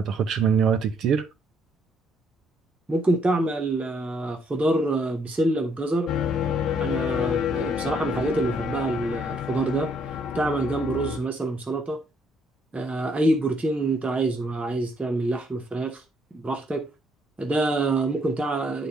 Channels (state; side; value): normal; both; correlation 0.69